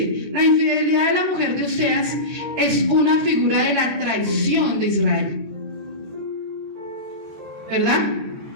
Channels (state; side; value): late; left; 13 ms